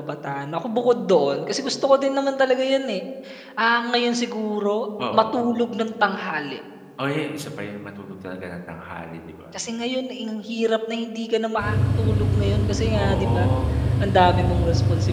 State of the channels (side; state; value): both; identical; correlation 1.00